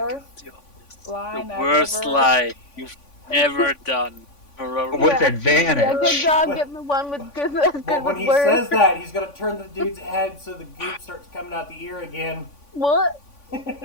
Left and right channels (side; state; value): right; late; 3.5 ms